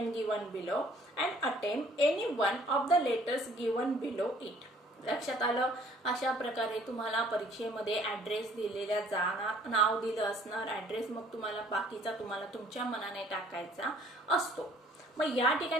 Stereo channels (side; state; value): both; normal; correlation 0.58